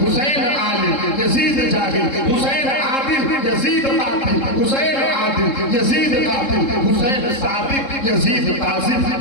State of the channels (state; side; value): late; right; 3.7 ms